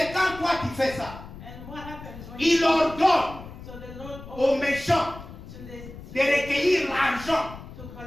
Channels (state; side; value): noise; left; rumble, 14 dB below the sound